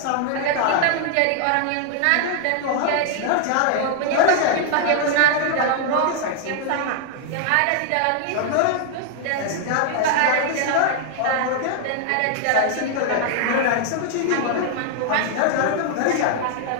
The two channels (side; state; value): both; different; correlation 0.00